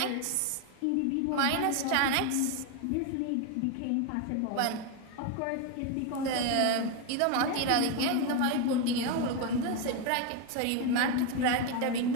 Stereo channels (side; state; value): both; different; correlation 0.02